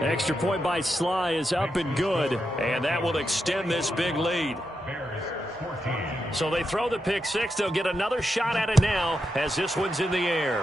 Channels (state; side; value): normal; both; correlation 0.86